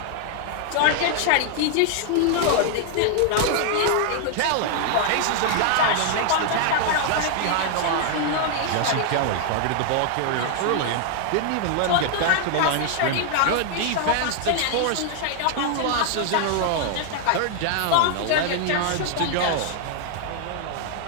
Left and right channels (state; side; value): different; both; correlation 0.00